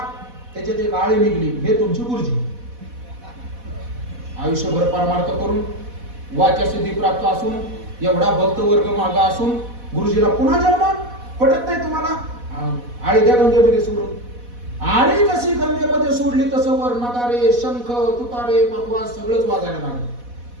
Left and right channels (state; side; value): late; left; 4.1 ms